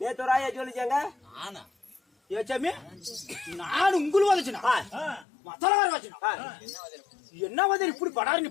நேத்து ராயா சொல்லிச்சாங்க. ஏச்சாமி நான் உங்களுக்கு வந்துச்சுனா மத்தலகார வச்சுனா என்ன வந்து இப்படி படாரு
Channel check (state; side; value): drops out; right; at 5.2 s